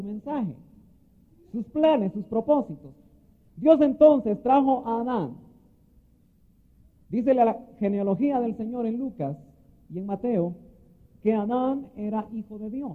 mensaje, sus planes, sus propósitos. Dios entonces trajo a Adán. Dice la genealogía del Señor en Lucas y en Mateo, que Adán era hijo de Dios.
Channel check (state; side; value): identical; both; correlation 1.00